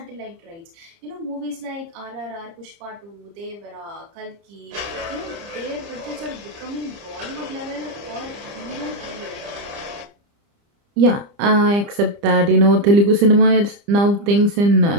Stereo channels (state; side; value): late; left; 30 ms